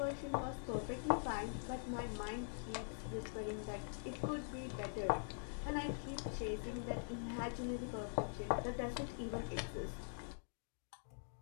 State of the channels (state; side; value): silent; right; digital silence